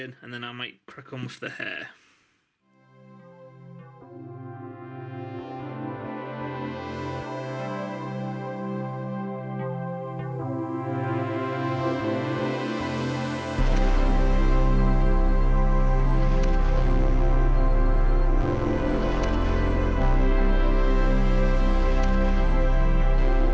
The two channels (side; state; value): both; identical; correlation 1.00